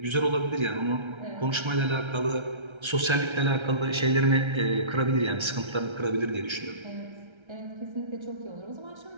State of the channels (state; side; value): late; left; 1.3 ms